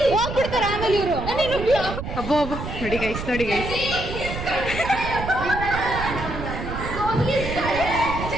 ಹೋಗ್ಬಿಡ್ತಾರ ಆಮೇಲೆ ಇವರು. ಅಬ್ಬೋ ಅಬ್ಬೋ, ನೋಡಿ ಗೈಸ್, ನೋಡಿ ಗೈಸ್.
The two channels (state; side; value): noise; right; rumble, 7 dB below the sound